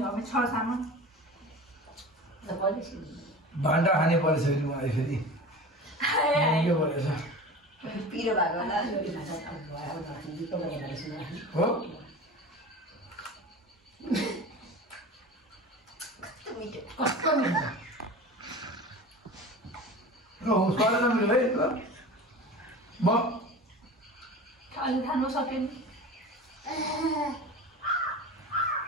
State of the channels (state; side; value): normal; both; correlation 0.34